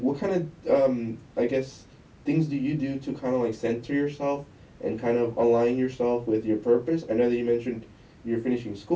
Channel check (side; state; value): both; identical; correlation 1.00